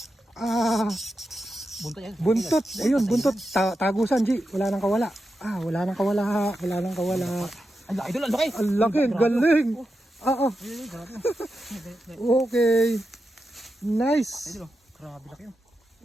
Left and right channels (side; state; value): both; normal; correlation 0.88